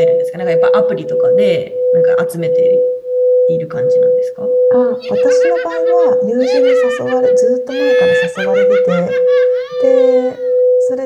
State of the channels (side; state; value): both; identical; correlation 1.00